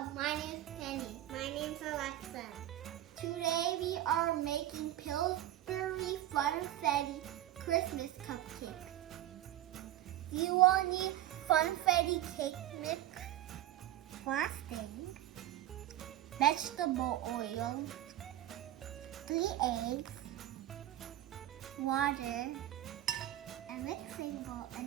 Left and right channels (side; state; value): left; quieter; 13.6 dB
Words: my name is Penny. My name's Alexa. Today we are making Pillsbury Funfetti Christmas cupcakes. You will need Funfetti cake mix, frosting, vegetable oil, 3 eggs, water, a mixing bowl